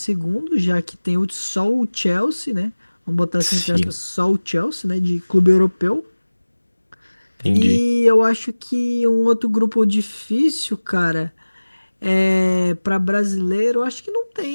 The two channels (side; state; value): both; inverted; correlation -1.00